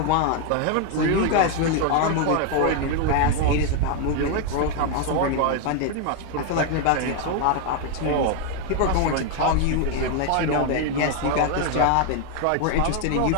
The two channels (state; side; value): different; both; correlation 0.00